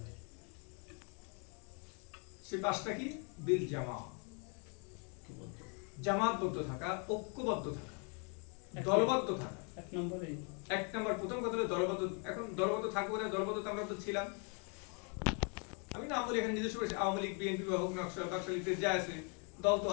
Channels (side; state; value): right; quieter; 38.0 dB